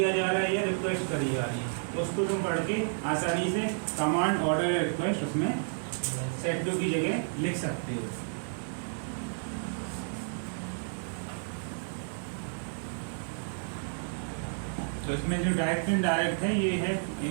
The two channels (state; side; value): silent; left; digital silence